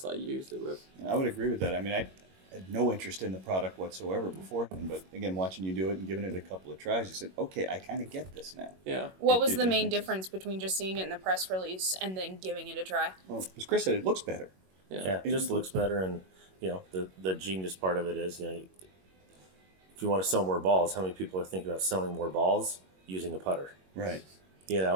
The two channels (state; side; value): late; left; 21 ms